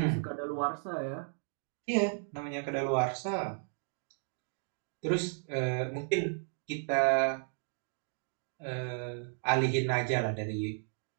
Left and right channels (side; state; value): left; silent; 55 dB below the other